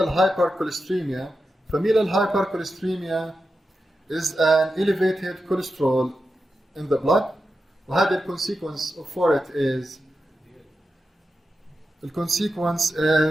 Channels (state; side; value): normal; both; correlation 0.90